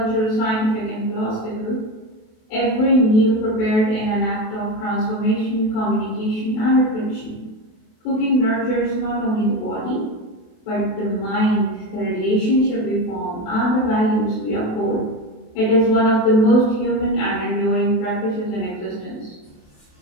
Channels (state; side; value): late; right; 28 ms